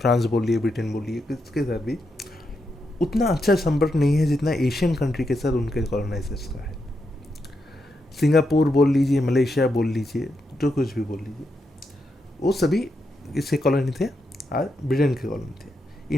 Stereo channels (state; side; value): normal; both; correlation 0.83